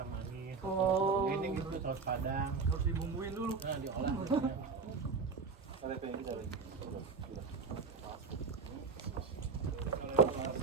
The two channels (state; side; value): quieter; left; 4.9 dB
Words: manis. Oh. Ini gitu saus padang. Harus dibumbuin dulu. Nah, diolah.